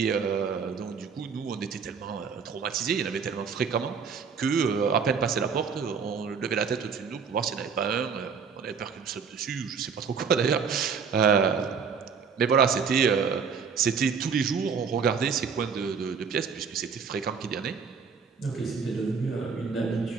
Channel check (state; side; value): quieter; left; 6.0 dB